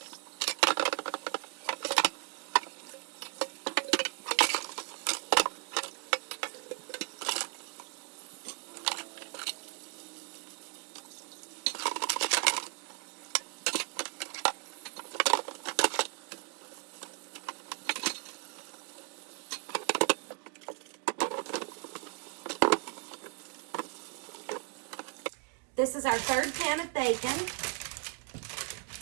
This is our 3rd pan of bacon.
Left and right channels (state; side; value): quieter; left; 37.0 dB